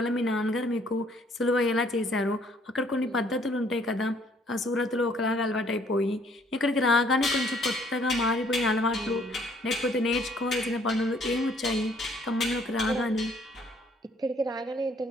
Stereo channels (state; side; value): normal; both; correlation 0.63